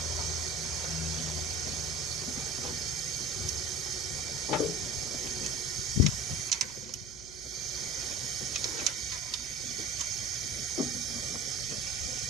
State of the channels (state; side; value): noise; right; hum, 20 dB below the sound